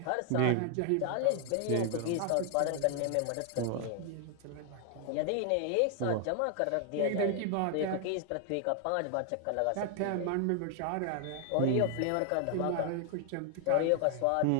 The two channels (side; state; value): both; different; correlation 0.00